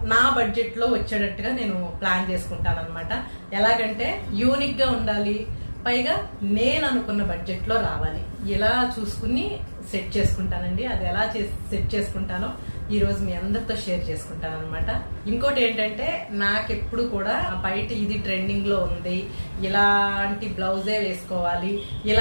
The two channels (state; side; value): inverted; both; correlation -1.00